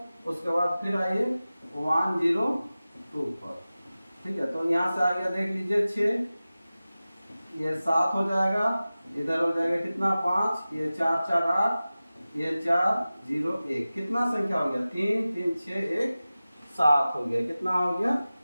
उसके बाद फिर आइए 1024। ठीक है, तो यहाँ से आ गया, देख लीजिए 6, ये 7 हो जाएगा, इधर हो जाएगा कितना 5, ये 4 4 8, ये 4 0 1, कितना संख्या हो गया, 3 3 6 1 7 हो गया। कितना हो गया,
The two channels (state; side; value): inverted; both; correlation -0.96